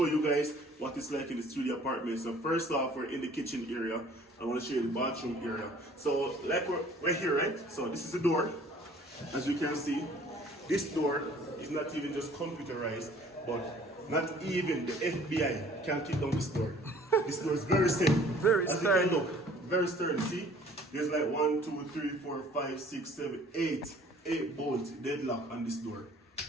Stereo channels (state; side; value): normal; both; correlation 0.54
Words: you guys what it's like in the studio apartment. So first off, we're in the kitchen area. I want to show you the bathroom area. So like we're here, right? So this is the door. As you can see, this door is not even just computerized, but not even the FBI can kick down this door. This door is very safe. Very As sturdy. you can look, very sturdy. See, there's like 1, 2, 3, 4, 5, 6, 7, 8 bolts deadlock on this door.